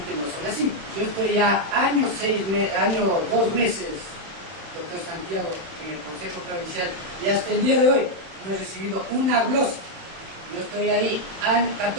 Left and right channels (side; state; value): left; late; 31 ms